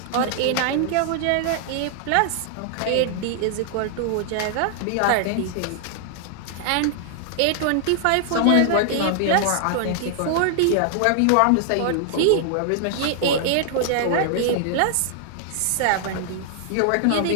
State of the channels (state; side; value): different; both; correlation -0.01